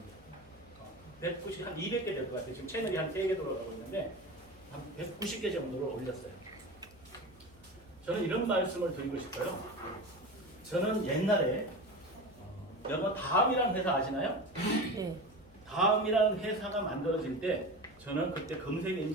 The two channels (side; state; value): left; noise; hum, 26 dB below the sound